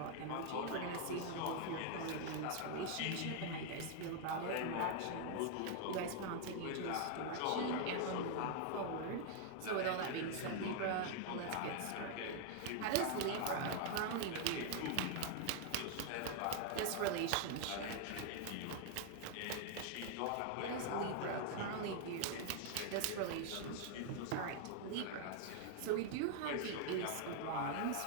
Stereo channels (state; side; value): different; both; correlation 0.00